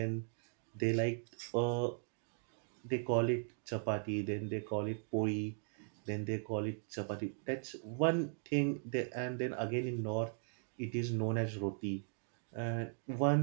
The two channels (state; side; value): silent; left; 52 dB below the other